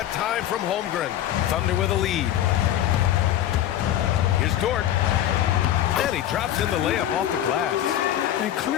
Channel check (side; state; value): right; quieter; 12.0 dB